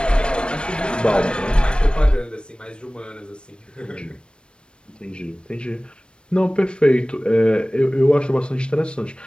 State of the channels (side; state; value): right; late; 0.056 ms